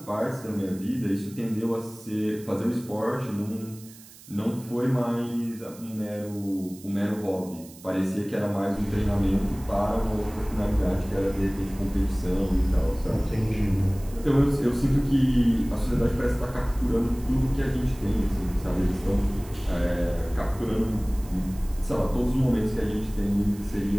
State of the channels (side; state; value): right; noise; hiss, 21 dB below the sound